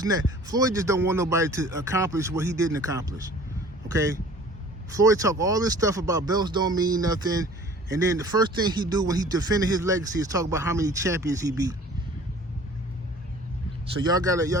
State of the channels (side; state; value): both; normal; correlation 0.48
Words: and that? Floyd just don't want nobody to accomplish what he didn't accomplish. Okay? Floyd talk all this stuff about belts don't mean nothing, and then the first thing he do when he defended his legacy is talk about how many champions he beat. So y'all